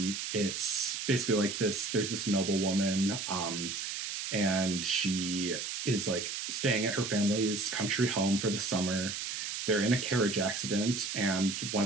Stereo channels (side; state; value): right; noise; hiss, 4 dB below the sound